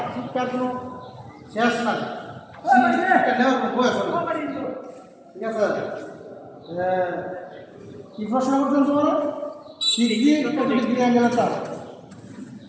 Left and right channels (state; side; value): identical; both; correlation 1.00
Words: শিক্ষার কোনো শেষ নাই নেওয়ার কোনো বয়স ঠিক আছে কি প্রশ্ন করছেন তোমার অ্যাঙ্গেলের চাপ